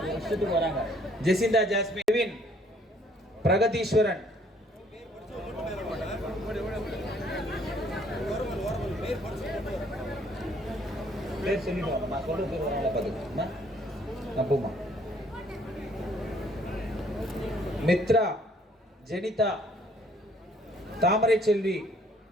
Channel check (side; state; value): both; normal; correlation 0.62